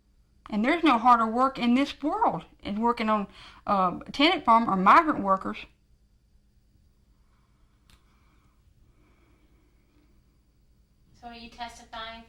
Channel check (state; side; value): identical; both; correlation 1.00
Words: And there's no harder work in this world than working on tenant farm or migrant workers. So are you testifying